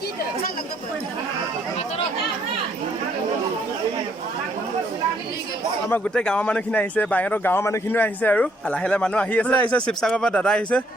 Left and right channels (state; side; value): normal; both; correlation 0.68